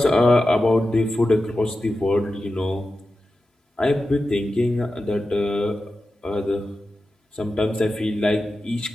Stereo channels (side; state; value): both; normal; correlation 0.92